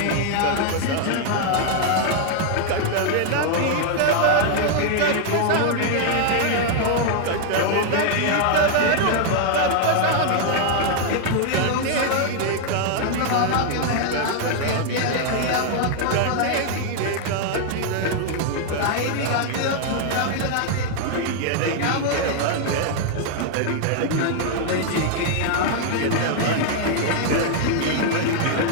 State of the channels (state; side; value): different; both; correlation 0.00